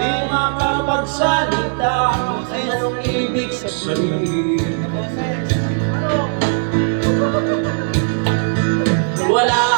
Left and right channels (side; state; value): left; silent; 67 dB below the other